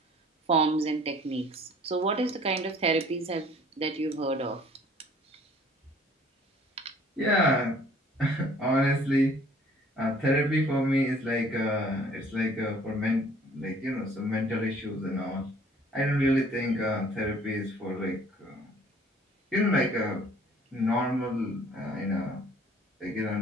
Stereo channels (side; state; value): both; normal; correlation 0.55